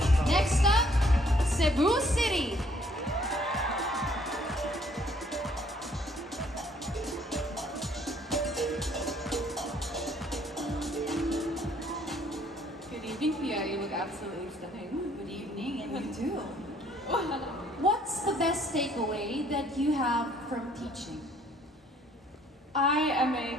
Next up, Cebu City. Good evening, Pia. You look absolutely stunning. Good evening, and you too. What's the best takeaway that you have from teaching? I am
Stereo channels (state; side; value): normal; both; correlation 0.62